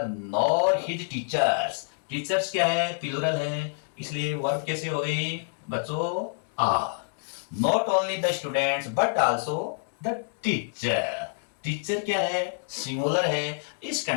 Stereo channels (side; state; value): right; silent; digital silence